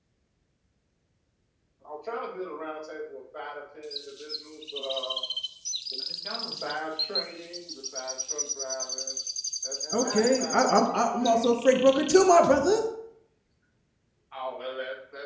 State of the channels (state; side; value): identical; both; correlation 1.00